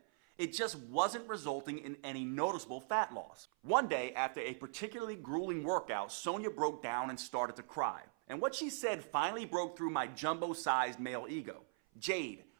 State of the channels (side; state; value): left; silent; 51 dB below the other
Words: It just wasn't resulting in any noticeable fat loss. One day, after a particularly grueling workout, Sonia broke down and started to cry. And what she said finally broke through my jumbo-sized male ego. "Jade,